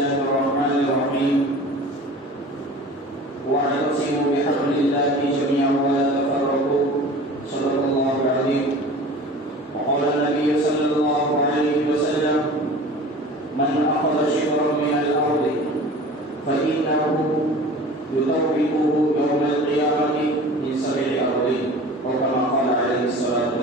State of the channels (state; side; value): normal; both; correlation 0.40